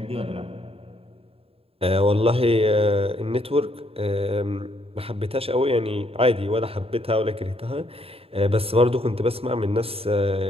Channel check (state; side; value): late; left; 0.28 ms